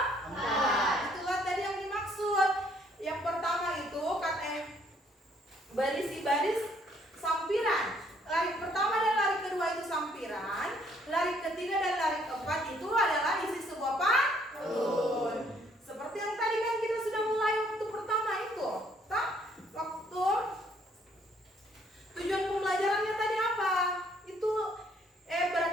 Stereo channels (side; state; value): both; normal; correlation 0.65